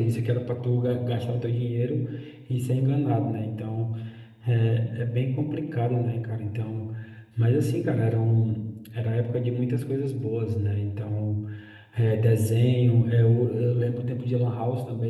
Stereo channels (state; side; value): identical; both; correlation 1.00